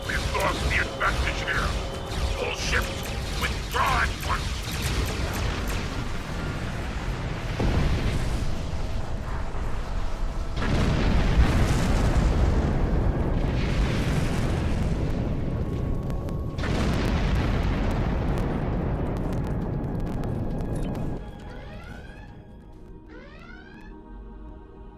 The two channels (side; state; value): both; identical; correlation 1.00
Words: We've lost the advantage here. All ships, withdraw at once.